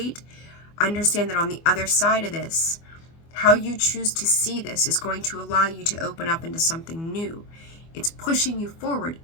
Understand that on the other side of this, how you choose to see this is going to allow you to open up into something new. It's pushing you forward.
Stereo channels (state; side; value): late; right; 24 ms